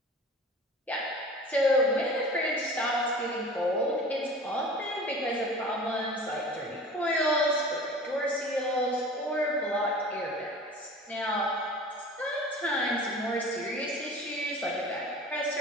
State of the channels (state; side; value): normal; both; correlation 0.40